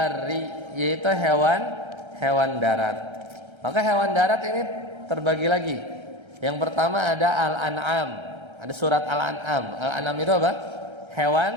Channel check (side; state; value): left; late; 1.3 ms